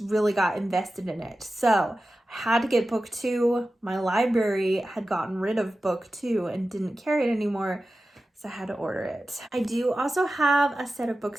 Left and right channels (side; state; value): both; normal; correlation 0.94